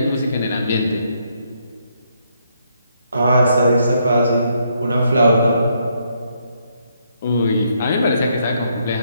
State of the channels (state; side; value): inverted; both; correlation -0.74